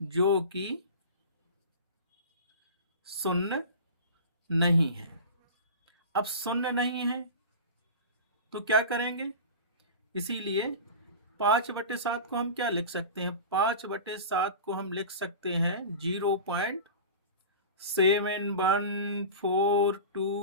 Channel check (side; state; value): both; inverted; correlation -0.32